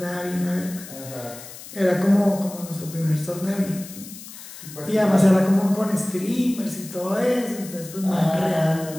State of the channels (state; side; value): noise; left; hiss, 15 dB below the sound